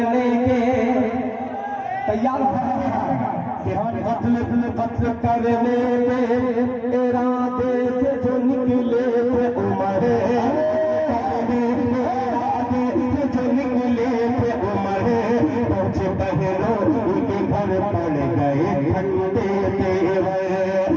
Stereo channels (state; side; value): identical; both; correlation 1.00